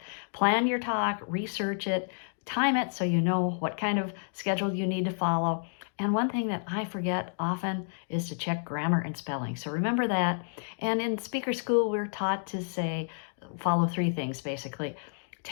Plan your talk, research it, time it so you know what kind of schedule you need to follow. And one thing that I forget often is to check grammar and spelling. So remember that. And in speaker school, we're taught to say, follow 3 things basically.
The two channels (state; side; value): silent; right; digital silence